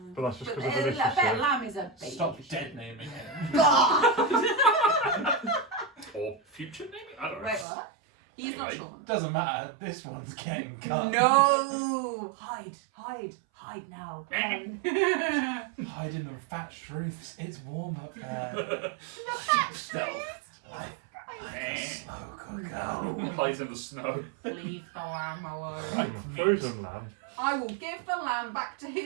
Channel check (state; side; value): drops out; left; at 7.7 s